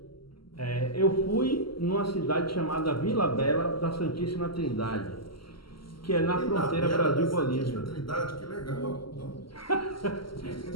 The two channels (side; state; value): right; late; 0.74 ms